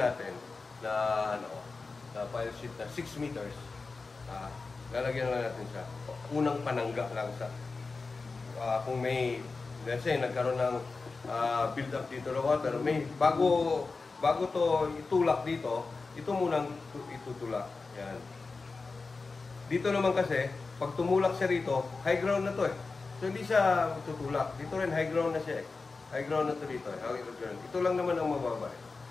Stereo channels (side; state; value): right; quieter; 4.0 dB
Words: na, na file sheet na 6 meters, lalagyan lang natin siya. Unang panangga lang sa, kung may, let's say, nagkaroon ng build up dito ng water, may, bago to itulak dito, ito munang itutulak. Yan. Dito naman kasi, pag tumulak siya rito, high ground na to eh. So hindi siya tutulak. Dito rin high ground na siya eh. High ground na to dito eh. Ito lang naman ang mababa eh.